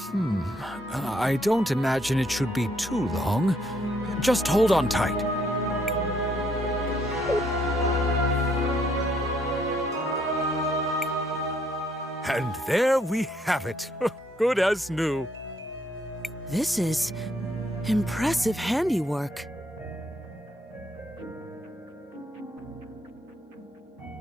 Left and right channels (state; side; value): normal; both; correlation 0.70